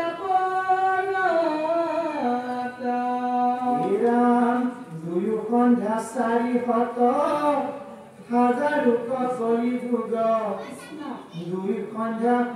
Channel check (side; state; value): both; identical; correlation 1.00